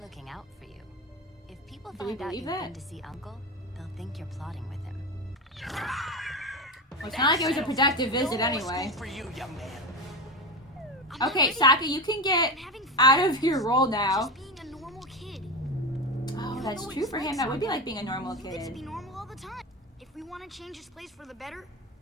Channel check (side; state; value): both; normal; correlation 0.21